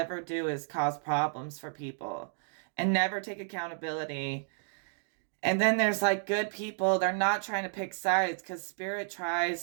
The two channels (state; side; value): silent; left; 57 dB below the other